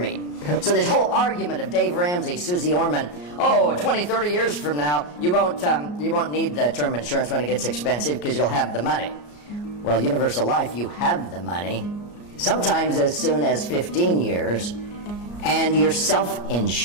So this whole argument of Dave Ramsey, Susie Orman, 20, 30 years from now, you won't need the term insurance when it gets expensive because you'll have the money. Well, Universal Life, you have the money, sometimes as soon as 15 years, and you're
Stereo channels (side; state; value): right; late; 34 ms